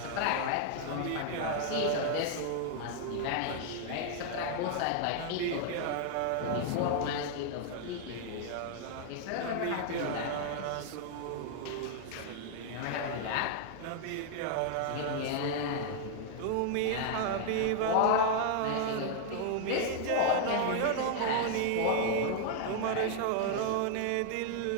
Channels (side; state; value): both; different; correlation 0.00